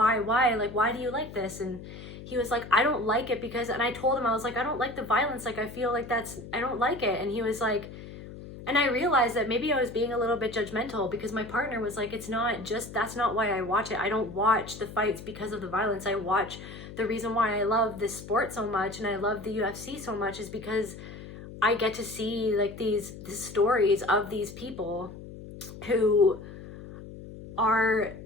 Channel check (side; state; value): left; noise; hum, 13 dB below the sound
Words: do you like this? And he was like, I don't like it because, and I told him, I was like, I don't like the violence. Like, I feel like I don't like it. And he was like, and I realized that maybe I was being a little bit judgmental, because my partner was like, that's not why I watch it. I don't watch the fights because of the violence. I watch, the reason why I love this sport so much and I love the UFC so much is because I get to see like these stories of these people who are